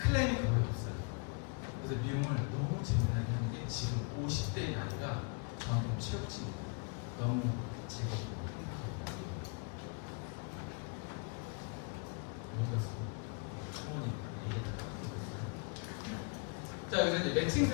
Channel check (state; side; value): quieter; right; 36.0 dB